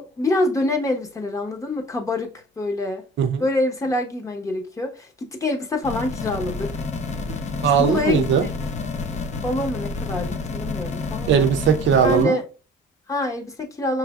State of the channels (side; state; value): both; normal; correlation 0.44